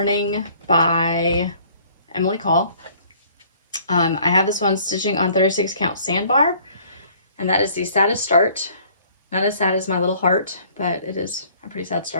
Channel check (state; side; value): inverted; both; correlation -0.56